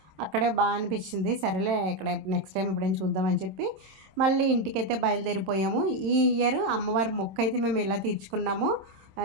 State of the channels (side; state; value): left; late; 26 ms